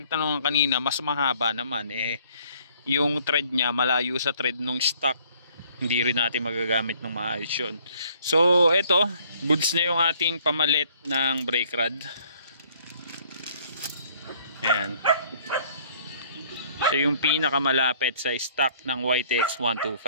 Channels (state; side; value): inverted; both; correlation -0.60